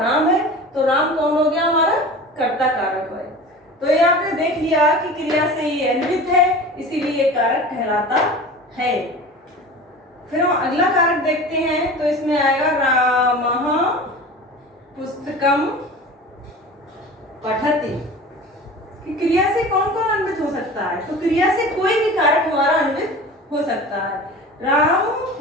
राम है, तो राम कौन हो गया? हमारा कर्ता कारक है। तो ये आपने देख लिया कि क्रिया से ये अन्वित है, इसीलिए ये कारक कहलाता है। फिर हम अगला कारक देखते हैं। तो इसमें आएगा रामः पुस्तकम पठति। कि क्रिया से कौन कौन अन्वित हो सकता है? तो क्रिया से कोई भी कारक हमारा अन्वित हो सकता है। राम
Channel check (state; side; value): normal; both; correlation 0.36